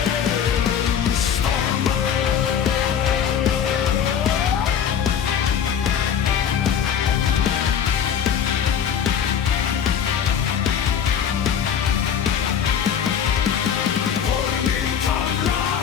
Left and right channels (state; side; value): quieter; right; 8.2 dB